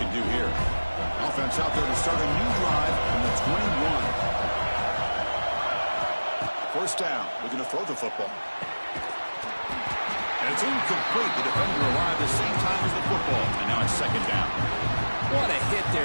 do here. Offense out there to start a new drive from the 21. First down. Looking to throw the football. And it's incomplete. The defender arrived at the same time as the football. And now it's 2nd down. What a hit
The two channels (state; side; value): inverted; both; correlation -1.00